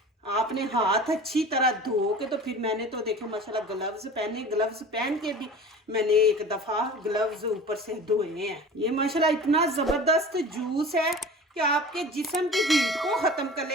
आपने हाथ अच्छी तरह धो के, तो फिर मैंने तो देखे माशाल्लाह ग्लव्स पहने, ग्लव्स पहन के भी मैंने 1 दफा ग्लव्स ऊपर से धोए हैं। ये माशाल्लाह इतना जबरदस्त जूस है कि आपके जिस्म की हीट को खत्म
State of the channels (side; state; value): both; normal; correlation 0.39